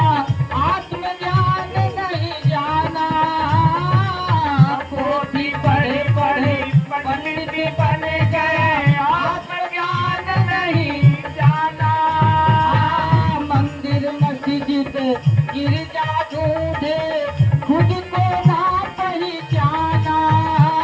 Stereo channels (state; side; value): identical; both; correlation 1.00